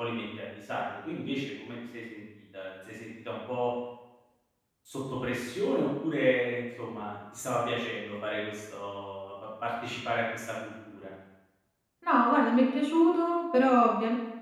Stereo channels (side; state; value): both; identical; correlation 1.00